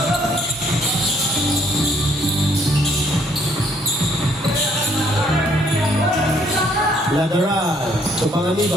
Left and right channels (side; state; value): both; normal; correlation 0.66